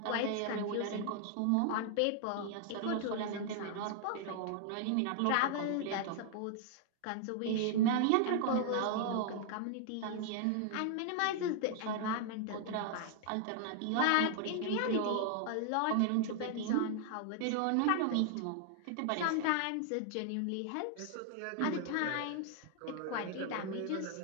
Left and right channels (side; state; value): both; different; correlation 0.00